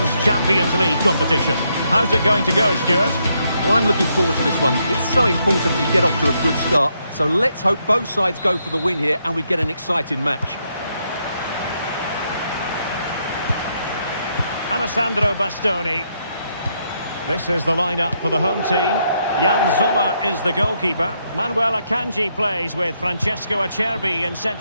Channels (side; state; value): both; inverted; correlation -0.77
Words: Champions League competition. How's it going to go, Stuart? Well, I'm looking forward to this one. It's so important that you get off to a good start. So let's hope both sides go for the win here and we get an exciting match. Alessandro Bastoni. This is the lineup for the home team. Jan Sommer is the goalkeeper. Manuel Akanji plays with Francesco Acerbi in